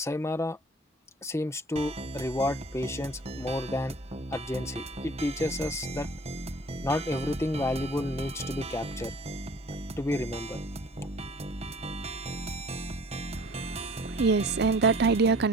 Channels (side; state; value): both; normal; correlation 0.49